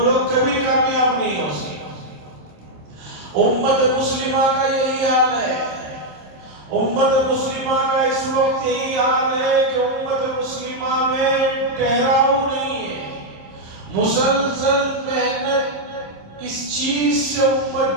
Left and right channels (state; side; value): late; left; 26 ms